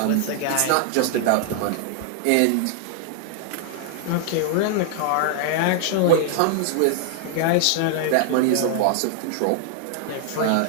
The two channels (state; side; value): different; both; correlation -0.01